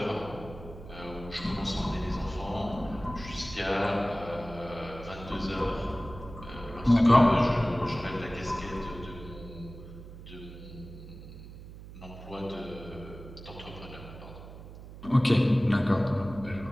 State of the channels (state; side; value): noise; right; hum, 15 dB below the sound